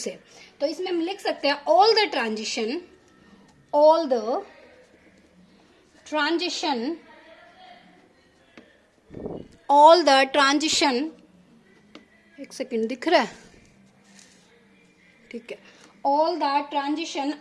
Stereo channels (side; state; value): both; identical; correlation 1.00